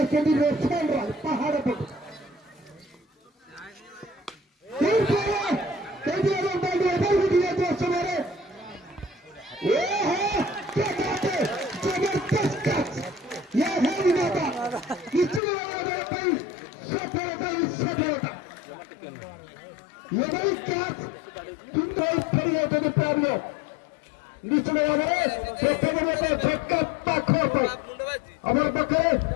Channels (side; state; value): right; drops out; at 15.4 s